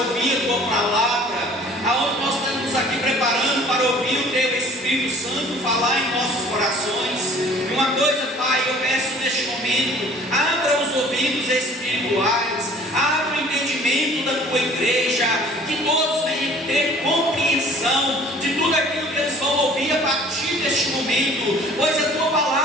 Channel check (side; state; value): both; normal; correlation 0.50